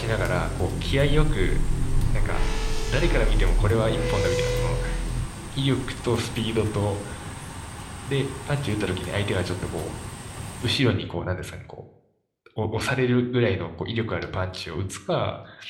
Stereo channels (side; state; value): both; identical; correlation 1.00